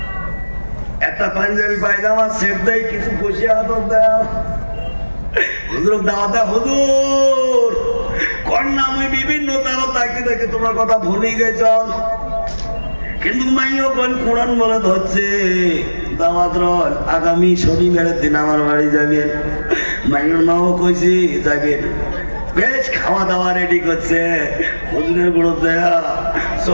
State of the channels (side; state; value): both; inverted; correlation -1.00